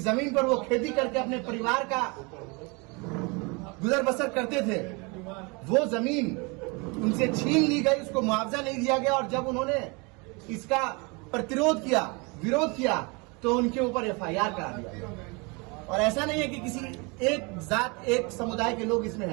जमीन पर वो खेती करके अपने परिवार का गुजर बसर करते थे, वो जमीन उनसे छीन ली गई, उसको मुआवजा नहीं दिया गया और जब उन्होंने इसका प्रतिरोध किया, विरोध किया, तो उनके ऊपर एफआईआर करा दिया गया। और ऐसा नहीं है कि किसी एक जात, एक समुदाय के लोग इसमें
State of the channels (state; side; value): quieter; left; 29.3 dB